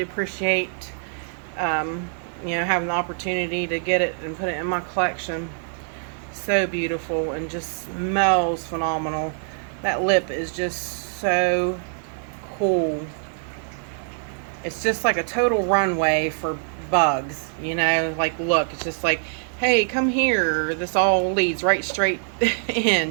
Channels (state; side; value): silent; left; digital silence